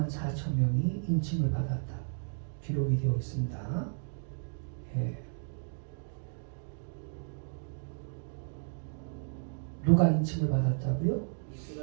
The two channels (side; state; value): left; silent; digital silence